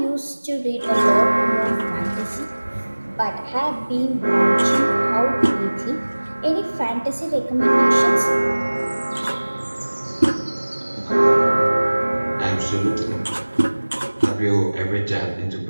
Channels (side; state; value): both; inverted; correlation -1.00